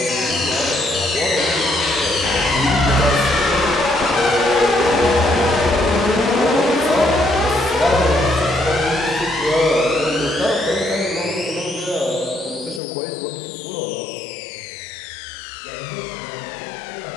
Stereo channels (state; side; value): drops out; right; at 12.8 s